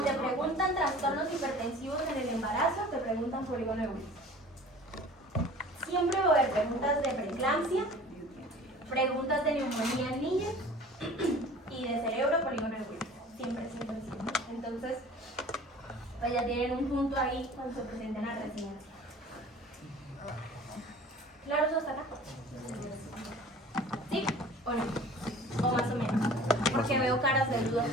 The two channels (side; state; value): both; normal; correlation 0.45